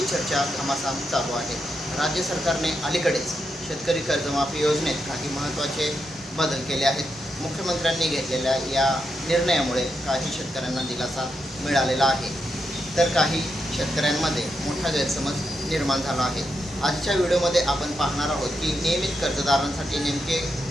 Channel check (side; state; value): both; normal; correlation 0.84